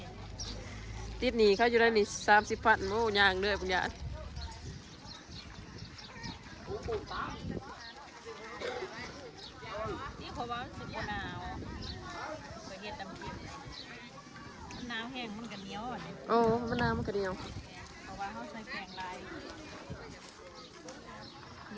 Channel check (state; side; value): identical; both; correlation 1.00